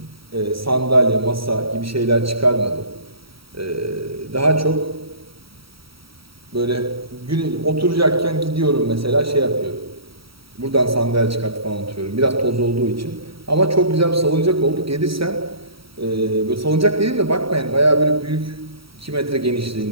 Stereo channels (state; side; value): late; left; 0.75 ms